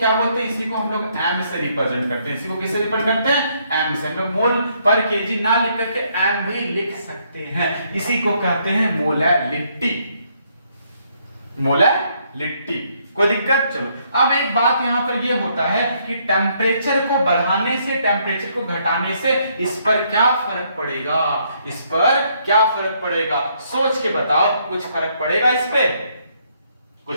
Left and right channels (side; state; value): both; inverted; correlation -0.71